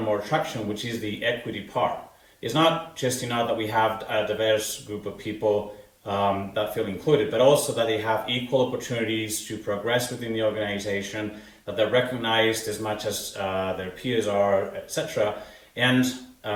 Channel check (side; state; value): both; identical; correlation 1.00